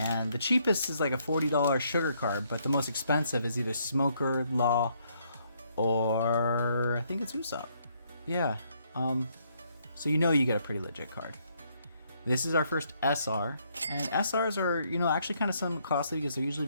the cheapest is like a $40 sugar card, but the most expensive is either Smoker, Law, or I think it's Usopp. Yeah, so you know you get a pretty legit card. This is our first SR, and SRs are, you know, actually kind of somewhat costly because they're usually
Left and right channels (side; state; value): both; inverted; correlation -0.71